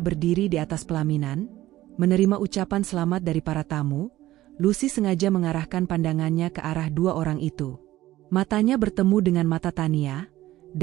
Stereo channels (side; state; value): left; quieter; 15.5 dB